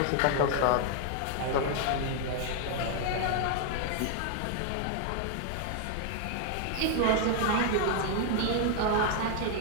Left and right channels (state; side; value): different; both; correlation 0.00